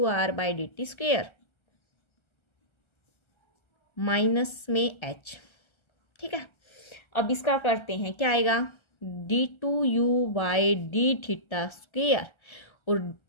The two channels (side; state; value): right; late; 1.3 ms